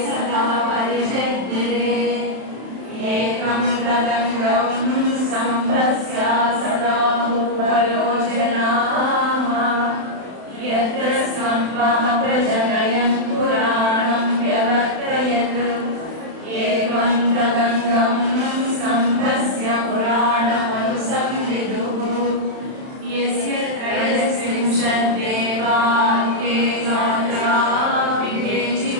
यत्रस्तम्भः प्रजनयन् पुराणं व्यवर्तयत् एवं तदङ्गं स्तम्भस्य पुराणमनुसंविदुः यस्य त्रयस्त्रिंशद्देवाङ्गे गात्रा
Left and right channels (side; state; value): left; late; 31 ms